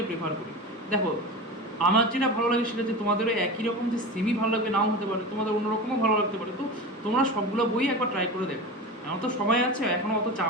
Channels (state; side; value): normal; both; correlation 0.28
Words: প্রেফার করি। দেখো, আমার যেটা ভালো লাগে সেটা যে তোমাদেরও একই রকম যে সেমি ভালো লাগবে নাও হতে পারে, তোমাদের অন্যরকমও ভালো লাগতে পারে। তো তোমরা সবগুলো বই একবার ট্রাই করে দেখো। এখন তো সময় আছে, এখনও অত